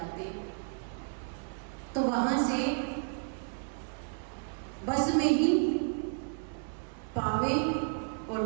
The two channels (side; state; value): left; silent; 56 dB below the other